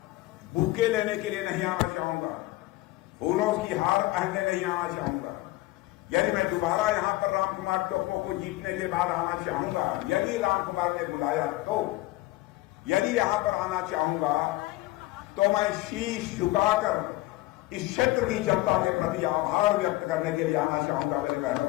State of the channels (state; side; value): quieter; right; 18.5 dB